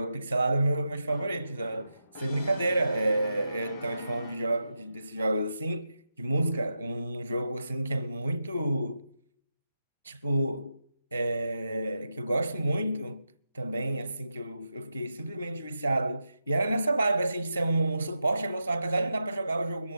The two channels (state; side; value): inverted; both; correlation -0.88